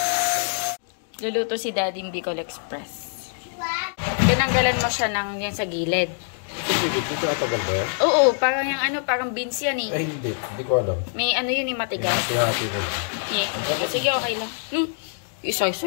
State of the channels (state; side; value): silent; right; 62 dB below the other